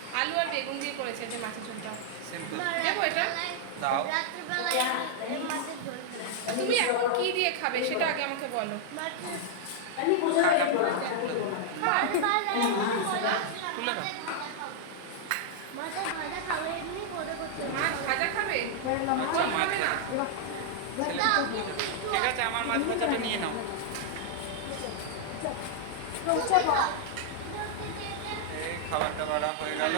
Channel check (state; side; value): different; both; correlation -0.01